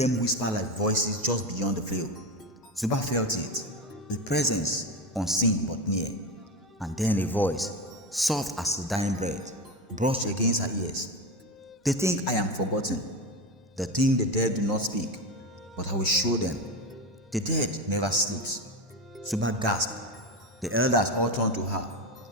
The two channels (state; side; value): normal; both; correlation 0.20